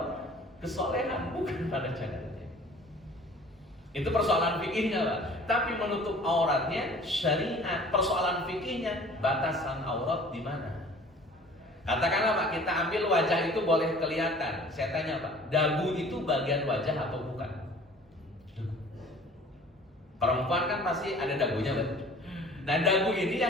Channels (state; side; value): normal; both; correlation 0.48